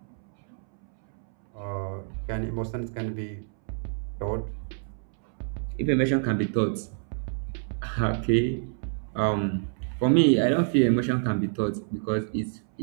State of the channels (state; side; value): silent; left; 60 dB below the other